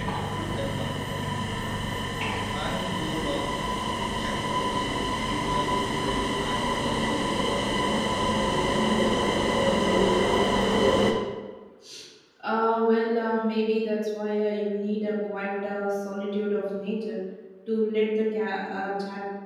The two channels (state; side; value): identical; both; correlation 1.00